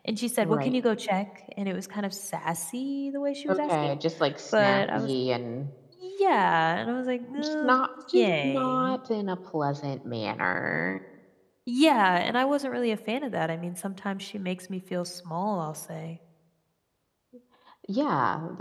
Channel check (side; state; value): both; identical; correlation 1.00